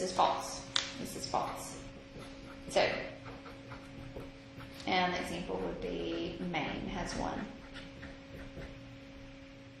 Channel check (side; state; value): both; identical; correlation 1.00